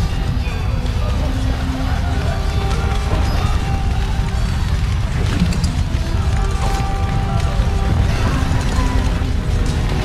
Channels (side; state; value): both; identical; correlation 1.00